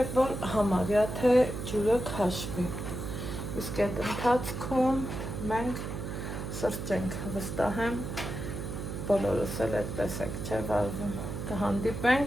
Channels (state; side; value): noise; right; hum, 5 dB below the sound